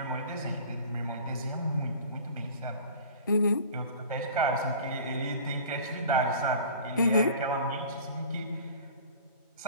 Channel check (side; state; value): both; inverted; correlation -0.42